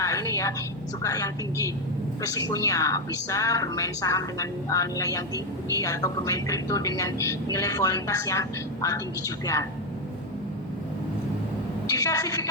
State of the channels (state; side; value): normal; both; correlation 0.07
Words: ini ya, suka yang tinggi resikonya, bisa bermain saham dengan nilai yang tinggi atau bermain kripto dengan nilai volatilitas yang tinggi juga.